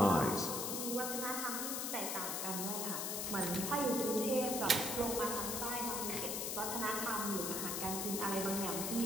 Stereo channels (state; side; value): noise; left; hiss, 1 dB below the sound